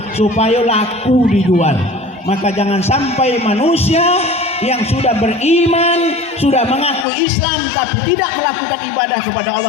supaya laku dijual. Maka jangan sampai manusia yang sudah beriman, sudah mengaku Islam tapi tidak melakukan ibadah kepada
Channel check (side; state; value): right; drops out; at 7.1 s